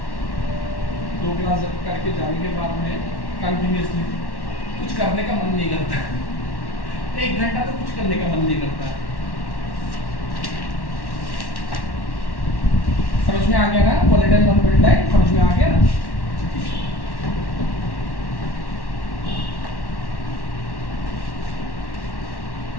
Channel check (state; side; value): late; right; 1.1 ms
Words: दो क्लास करके जाने के बाद में कंटिन्यूसली कुछ करने का मन नहीं करता। 1 घंटा तो कुछ करने का मन नहीं करता। समझ में आ गया ना? वोलेटाइल नॉन वोलेटाइल समझ में आ गया ना?